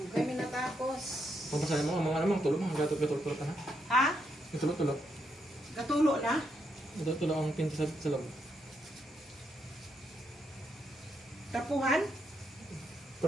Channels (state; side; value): normal; both; correlation 0.79